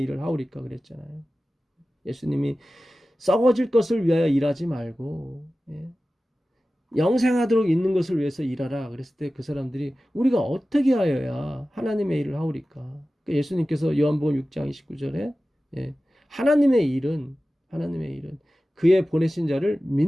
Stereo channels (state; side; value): normal; both; correlation 0.95